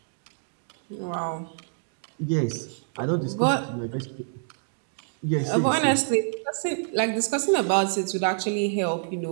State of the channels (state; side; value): silent; left; digital silence